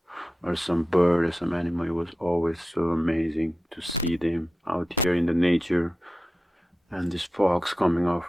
some bird or some animal, it was always so amazing to see them out here in the nature, and these fogs coming out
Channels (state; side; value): normal; both; correlation 0.92